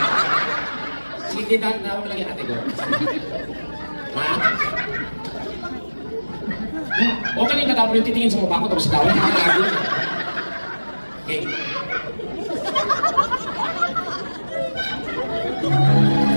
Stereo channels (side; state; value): both; inverted; correlation -1.00